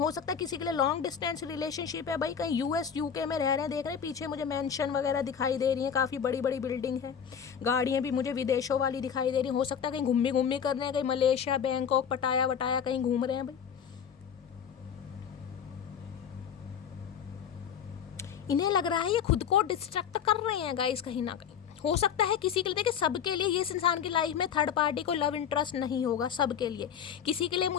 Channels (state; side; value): quieter; right; 7.9 dB